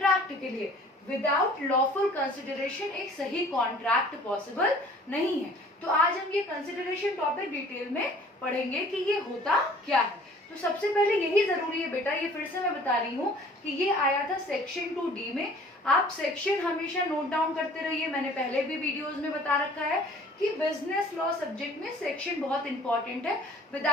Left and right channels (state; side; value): normal; both; correlation 0.51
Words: के लिए। विदाउट लॉफुल कंसिडरेशन एक सही कॉन्ट्रैक्ट पॉसिबल नहीं है। तो आज हम ये कंसिडरेशन टॉपिक डिटेल में पढ़ेंगे कि ये होता क्या है। तो सबसे पहले यही जरूरी है बेटा, ये फिर से मैं बता रही हूँ कि ये आया था सेक्शन 2D में। आप सेक्शन हमेशा नोट डाउन करते रहिए, मैंने पहले भी वीडियोस में बता रखा है कि बिजनेस लॉ सब्जेक्ट में सेक्शन बहुत इंपॉर्टेंट है।